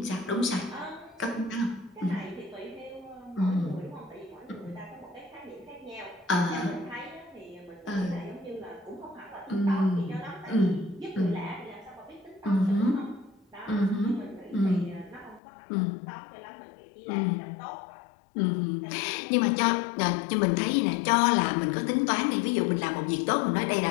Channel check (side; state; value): right; drops out; at 15.4 s